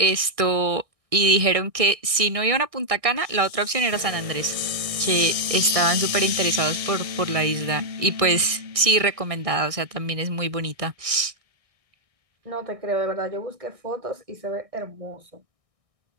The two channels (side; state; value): left; late; 1.6 ms